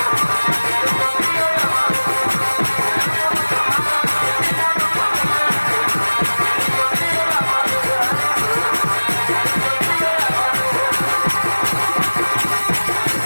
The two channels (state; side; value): inverted; both; correlation -1.00